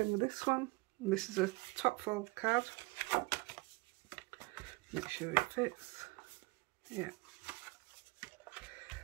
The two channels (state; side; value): quieter; left; 24.9 dB